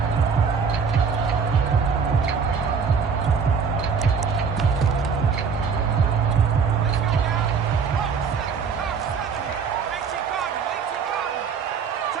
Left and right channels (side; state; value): left; quieter; 5.9 dB